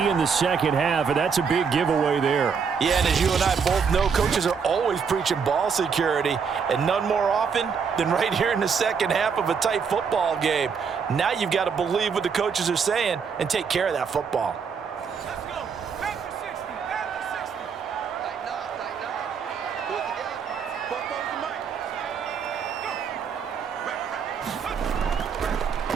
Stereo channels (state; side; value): quieter; left; 6.2 dB